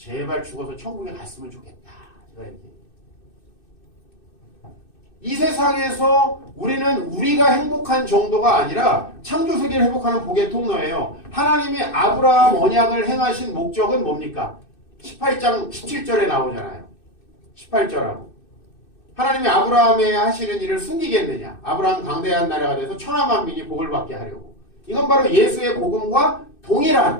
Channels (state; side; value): late; right; 2.6 ms